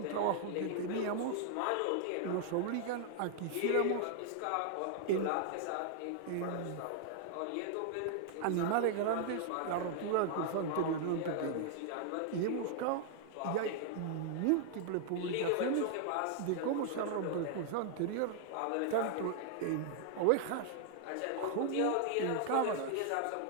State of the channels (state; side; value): different; both; correlation 0.00